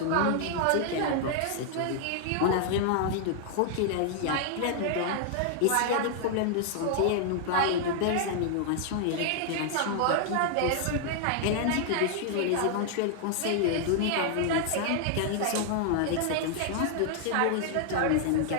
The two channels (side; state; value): both; different; correlation -0.01